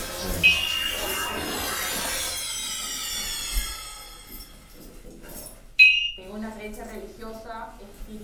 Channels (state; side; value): identical; both; correlation 1.00